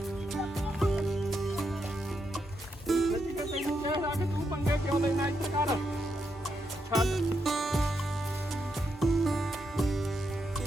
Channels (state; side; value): normal; both; correlation 0.81